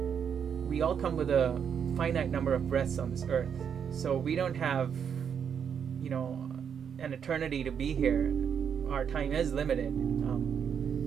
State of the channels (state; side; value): quieter; left; 7.6 dB